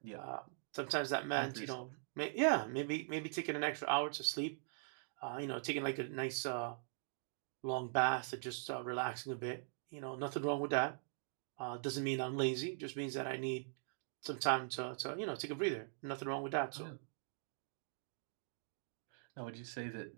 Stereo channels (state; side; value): silent; left; digital silence